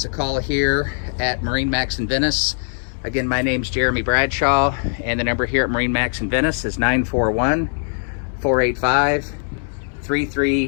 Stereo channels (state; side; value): silent; right; digital silence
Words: a call here at MarineMax Venice. Again, my name's Jeremy Bradshaw, and the number here at MarineMax Venice is